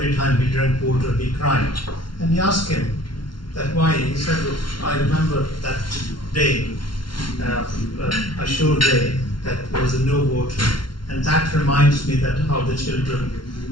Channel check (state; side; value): late; right; 0.72 ms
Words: time he drank water he cried, and he asked him that why. He said, look, I remember that day, a sure day, that there was no water, and that reminds me that how the children,